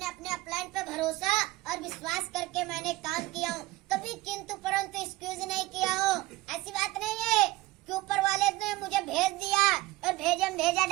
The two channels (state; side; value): quieter; left; 19.0 dB